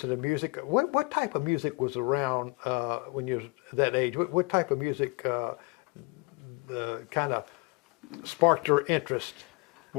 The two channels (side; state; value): right; quieter; 27.8 dB